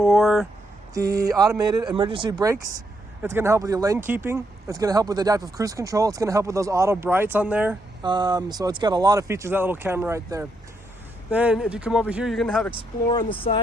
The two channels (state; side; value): normal; both; correlation 0.78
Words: the automated emergency brakes. It's going to help with your lane keeping. It's going to help with adaptive cruise control. It's going to help with those auto brights on there. So it's got a lot of features, that little camera right there. Then if you come over here, you're going to have Explorer on the